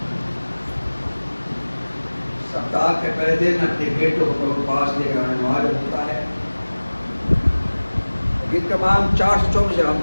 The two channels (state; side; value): inverted; both; correlation -1.00